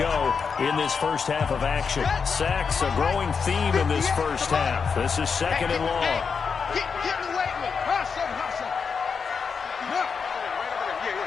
in this first half of action. Sacks, a growing theme in this first half. This is 2nd and long. Get away with it. Hustle. Yeah.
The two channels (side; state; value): right; quieter; 5.8 dB